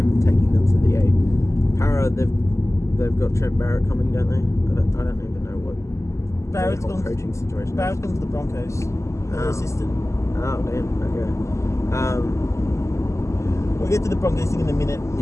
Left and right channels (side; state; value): right; late; 0.14 ms